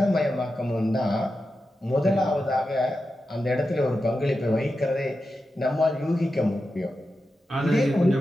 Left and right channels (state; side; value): normal; both; correlation 0.90